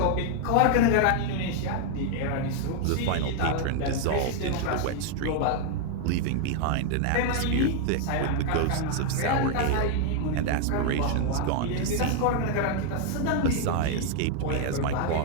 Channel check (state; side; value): different; both; correlation 0.00